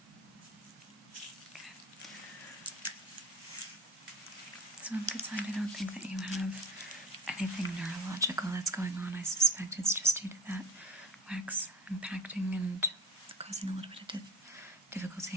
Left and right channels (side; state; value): both; normal; correlation 0.35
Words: Okay. So on the good side, I don't think that you have anything neurological that's going on. I suspect it's just due to that wax impacting and causing a little bit of